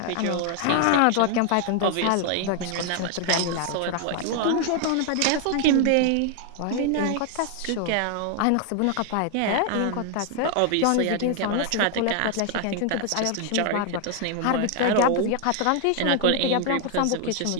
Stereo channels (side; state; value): both; different; correlation 0.00